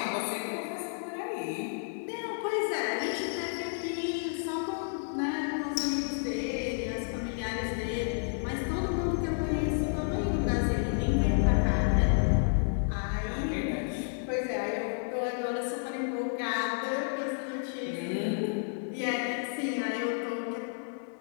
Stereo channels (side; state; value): right; silent; digital silence